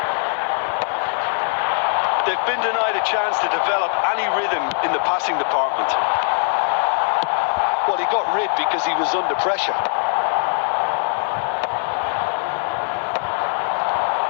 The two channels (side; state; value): right; silent; 65 dB below the other